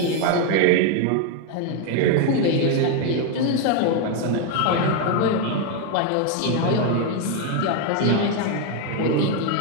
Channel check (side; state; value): both; different; correlation 0.01